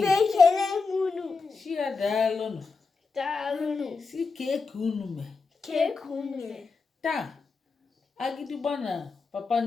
Shia dalonu Dalunu. si kekunume Kekume. ta agidigba na papa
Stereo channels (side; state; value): right; quieter; 4.5 dB